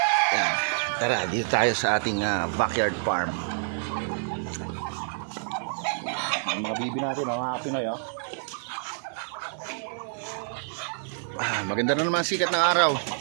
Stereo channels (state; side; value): silent; left; 60 dB below the other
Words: Yan, tara, dito tayo sa ating backyard farm. Ang mga bibi natin mga kapinoy, oh. Maganda na naman sikat ng araw.